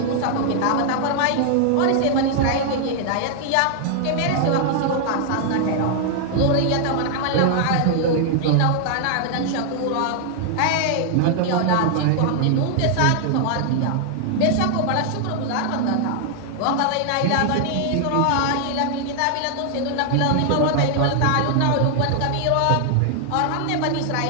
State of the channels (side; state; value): both; different; correlation 0.00